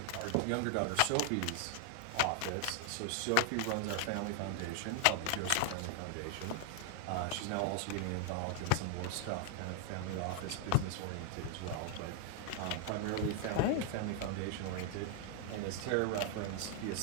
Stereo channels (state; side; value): different; both; correlation 0.00